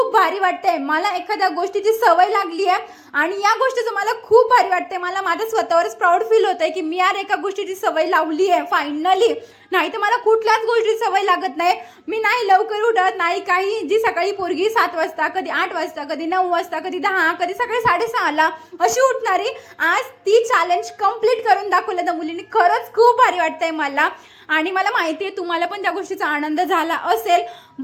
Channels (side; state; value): both; identical; correlation 1.00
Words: भारी वाटतंय। मला एखाद्या गोष्टीची सवय लागली आहे आणि या गोष्टीचं मला खूप भारी वाटतंय। मला माझ्या स्वतःवरच प्राऊड फील होतंय की मी यार एका गोष्टीची सवय लावली आहे फायनली। नाही तर मला कुठल्याच गोष्टीची सवय लागत नाही। मी नाही लवकर उठत नाही काही। जी सकाळी पोरगी 7 वाजता, कधी 8 वाजता, कधी 9 वाजता, कधी 10, कधी सकाळी 6:30 ला अशी उठणारी, आज ती चॅलेंज कंप्लीट करून दाखवलं त्या मुलीने। खरंच खूप भारी वाटतंय मला आणि मला माहिती आहे तुम्हाला पण त्या गोष्टीचा आनंद झाला असेल।